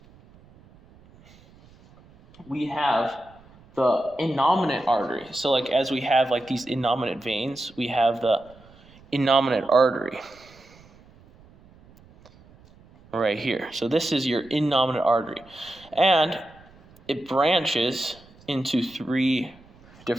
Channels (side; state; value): right; noise; rumble, 26 dB below the sound